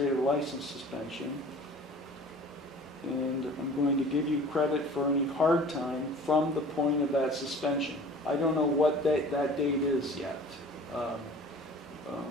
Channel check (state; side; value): normal; both; correlation 0.45